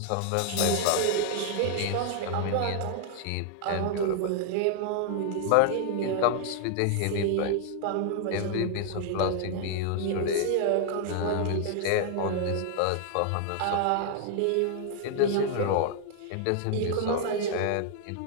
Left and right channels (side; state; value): both; different; correlation 0.00